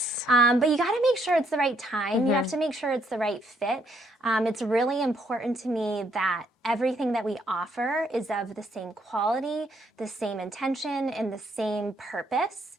But you got to make sure it's the right time. You have to make sure it's the right fit. It's really important to me that everything that we offer is of the same quality, the same intention, and the same purpose.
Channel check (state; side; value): normal; both; correlation 0.71